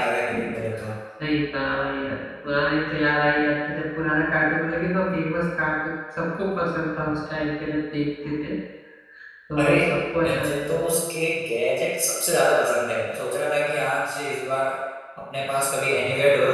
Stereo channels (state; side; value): identical; both; correlation 1.00